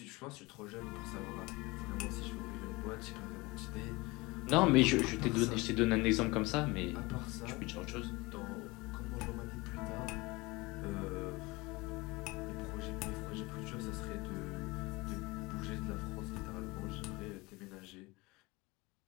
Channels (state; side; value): quieter; right; 23.5 dB